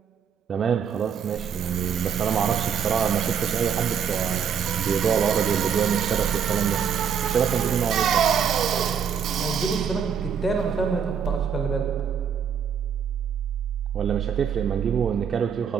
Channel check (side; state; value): left; quieter; 7.4 dB